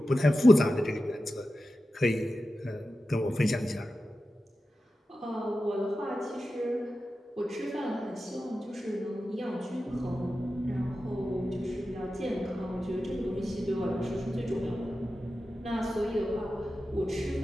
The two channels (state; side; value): normal; both; correlation 0.92